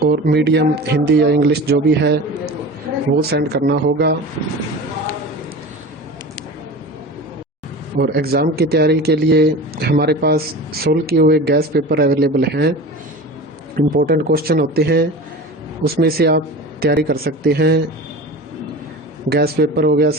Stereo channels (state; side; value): normal; both; correlation 0.33